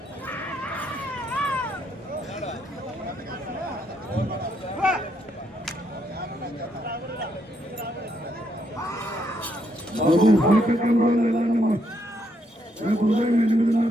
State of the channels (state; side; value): normal; both; correlation 0.75